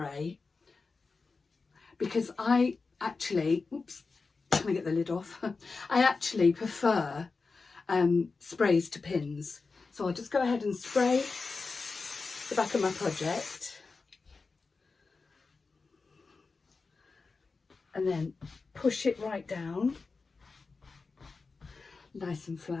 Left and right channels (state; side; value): quieter; right; 4.2 dB